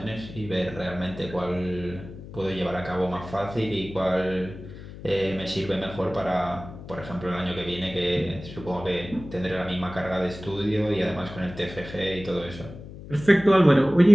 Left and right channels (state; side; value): noise; left; hum, 14 dB below the sound